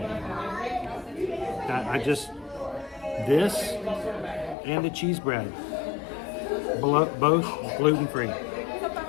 this and the cheese bread, both gluten-free.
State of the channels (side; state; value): right; drops out; at 4.5 s